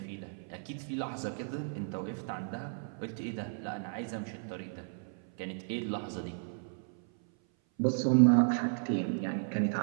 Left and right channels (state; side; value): silent; left; 55 dB below the other